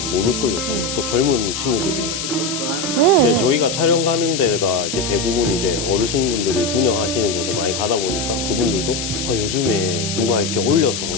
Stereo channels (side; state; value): left; noise; hiss, 4 dB below the sound